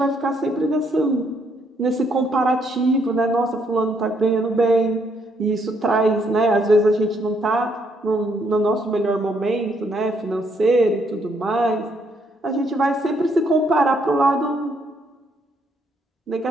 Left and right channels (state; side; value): normal; both; correlation 0.72